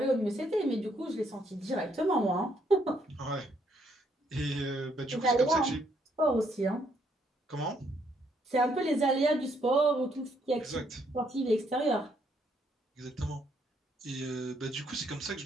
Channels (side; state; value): both; normal; correlation 0.71